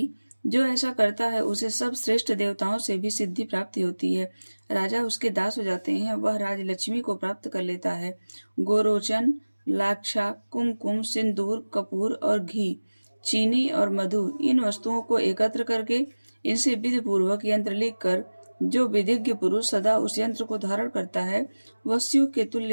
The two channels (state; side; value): inverted; both; correlation -1.00